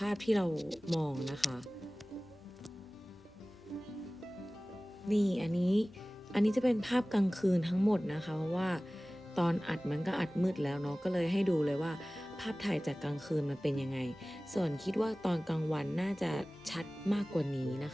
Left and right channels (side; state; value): both; normal; correlation 0.98